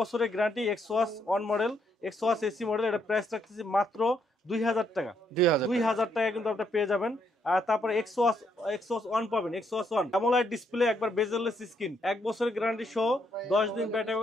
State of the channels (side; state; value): both; normal; correlation 0.74